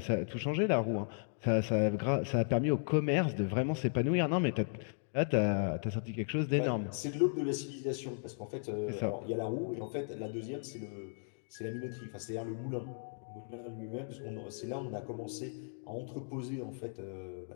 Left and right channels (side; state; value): right; silent; digital silence